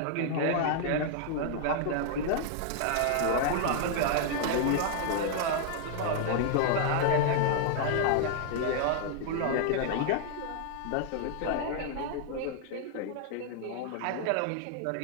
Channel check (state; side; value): different; both; correlation 0.00